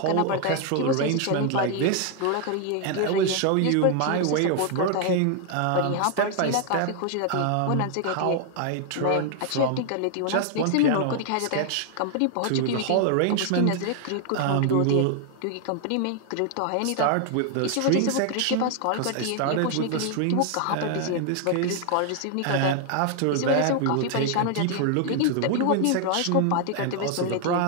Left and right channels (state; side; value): different; both; correlation 0.00